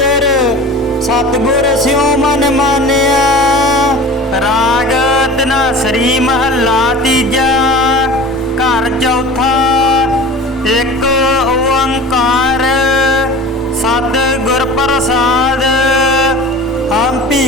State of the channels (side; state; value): both; normal; correlation 0.38